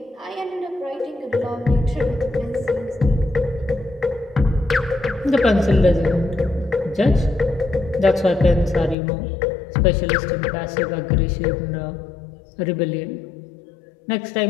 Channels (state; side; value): drops out; right; at 9.0 s